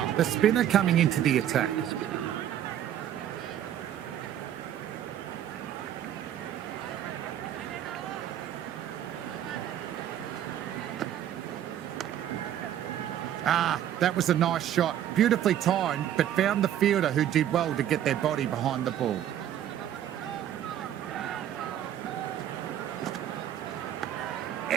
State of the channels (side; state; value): left; quieter; 11.0 dB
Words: the spinner coming into the attack. That was a nice shot. Beautifully timed, but found the fielder who did well to get their body behind the ball.